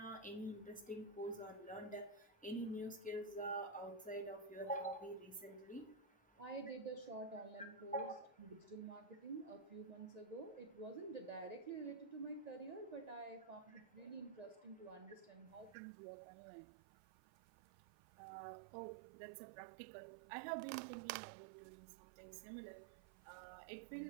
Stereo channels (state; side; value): drops out; left; at 15.8 s